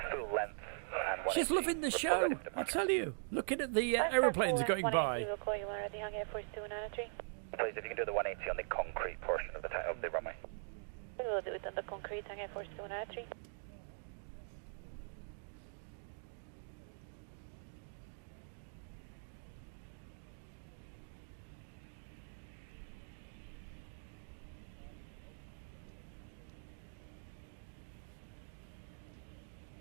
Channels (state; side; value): silent; left; digital silence